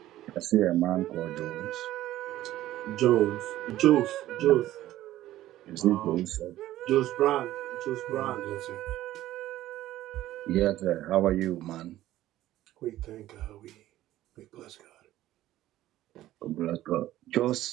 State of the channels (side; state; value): left; quieter; 14.5 dB